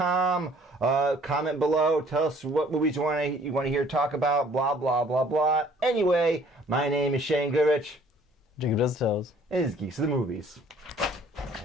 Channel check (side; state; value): both; normal; correlation 0.57